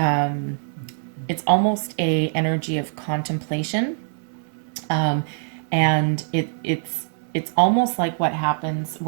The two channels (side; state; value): left; silent; digital silence